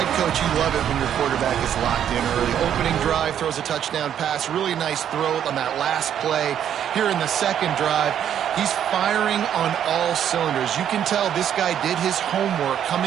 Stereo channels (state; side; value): quieter; left; 9.6 dB